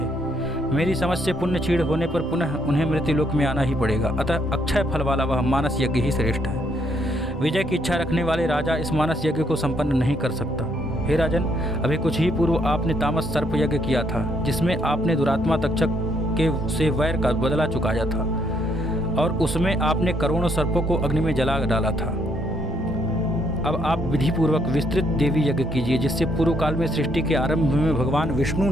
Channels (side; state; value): both; normal; correlation 0.72